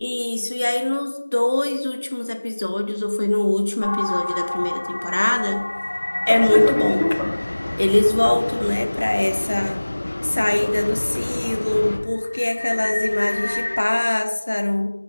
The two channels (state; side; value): inverted; both; correlation -1.00